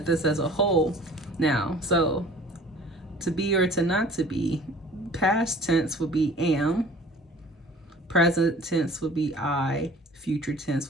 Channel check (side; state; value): both; normal; correlation 0.48